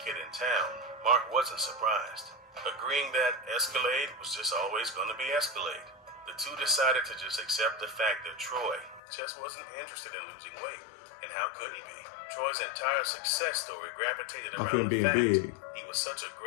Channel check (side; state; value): right; drops out; at 9.0 s